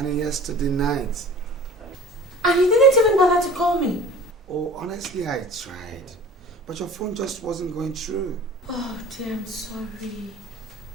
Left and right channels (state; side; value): normal; both; correlation 0.42